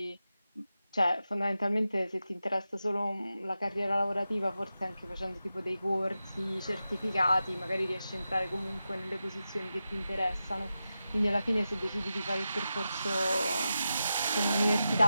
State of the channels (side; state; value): both; inverted; correlation -0.91